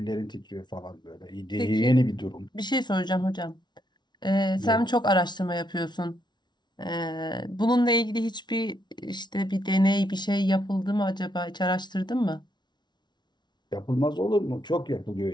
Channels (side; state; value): right; late; 0.21 ms